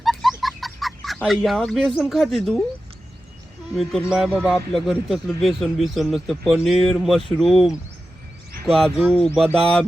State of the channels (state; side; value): normal; both; correlation 0.93